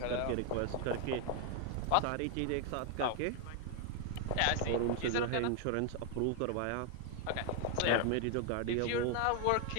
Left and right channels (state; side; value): different; both; correlation 0.00